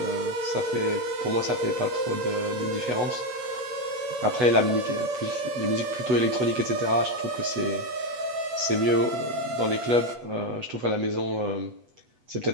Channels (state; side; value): late; left; 8.1 ms